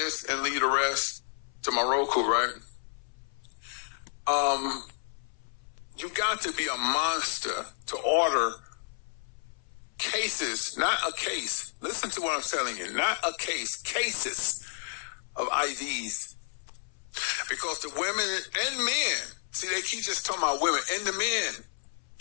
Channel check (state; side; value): silent; right; 57 dB below the other